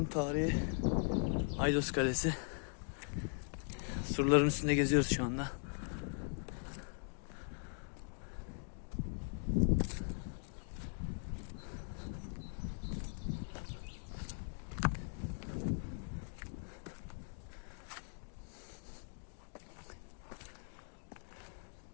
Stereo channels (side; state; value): right; silent; 51 dB below the other